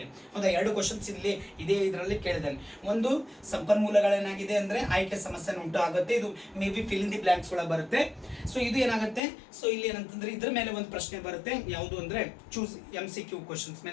ಹೌದಾ, 2 ಕ್ವಶನ್ಸ್ ಇಲ್ಲಿ ಇದರಲ್ಲಿ ಕೇಳಿದ್ದಾನೆ. ಒಂದು ಸಂಪನ್ಮೂಲಗಳೇನಾಗಿದೆ ಅಂದ್ರೆ ಆಯ್ಕೆ ಸಮಸ್ಯೆನ ಉಂಟು ಆಗುತ್ತೆ. ಇದು may be fill in the blanks ಒಳಗೆ ಬರುತ್ತೆ. ಸೊ ಇದು ಏನಾಗುತ್ತೆ, ಸೊ ಇಲ್ಲಿ ಏನಂತಂದ್ರೆ ಇದ್ರ ಮೇಲೆ ಒಂದು ಪ್ರಶ್ನೆ ಬರುತ್ತೆ. ಯಾವುದು ಅಂದ್ರೆ ಚೂಸ್ MCQ ಕ್ವಶನ್ಸ್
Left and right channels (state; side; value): drops out; right; at 9.2 s